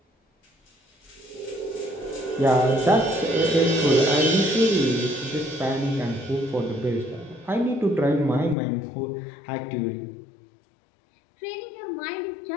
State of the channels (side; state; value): right; drops out; at 8.6 s